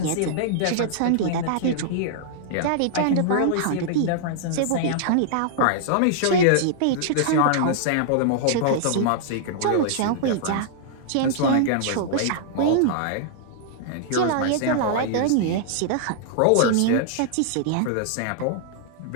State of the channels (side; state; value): both; different; correlation -0.01